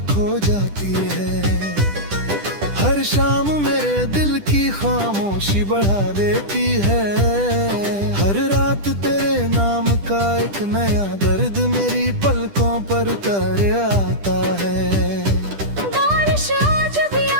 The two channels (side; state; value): left; late; 10 ms